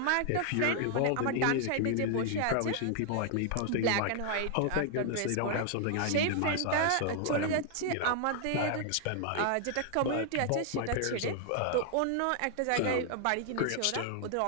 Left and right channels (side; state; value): both; different; correlation 0.00